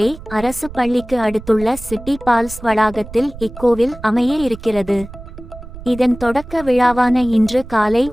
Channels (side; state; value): right; noise; rumble, 15 dB below the sound